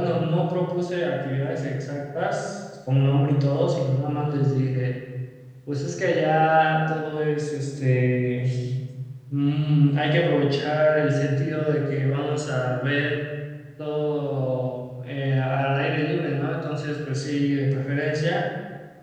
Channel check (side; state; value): both; identical; correlation 1.00